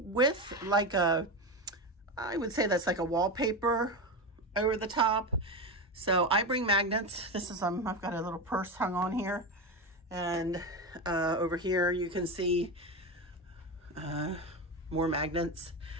with like I would say that's like a wallpaper over the top. So I bring magnets. This is, I've got a little purse hung on here. And over here you can see more magnets.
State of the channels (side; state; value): both; normal; correlation 0.18